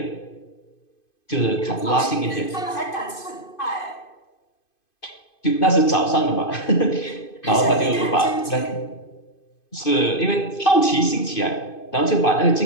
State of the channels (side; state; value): right; late; 2.5 ms